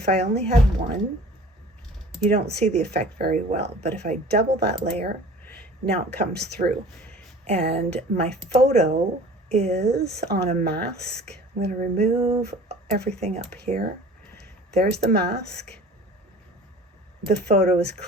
I only had one, you don't see the effect very well, but if I double that layer, now it comes through. And my photo is on a mask. I'm going to remove everything up here. There's the mask. The photo is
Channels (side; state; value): both; normal; correlation 0.45